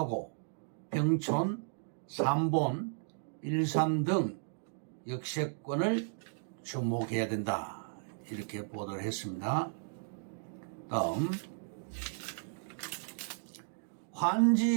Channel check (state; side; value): silent; left; digital silence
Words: 평촌, 삼본, 일산 등 역세권을 주목해야 된다. 이렇게 보도를 했습니다. 다음,